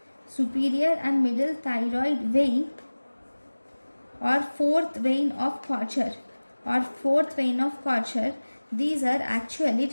Superior and middle thyroid vein or fourth vein of Kocher these are actually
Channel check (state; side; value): inverted; both; correlation -1.00